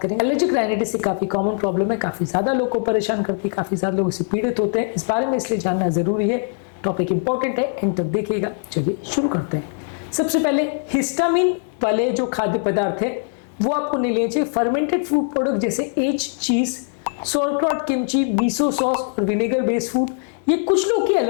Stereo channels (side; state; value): right; silent; 61 dB below the other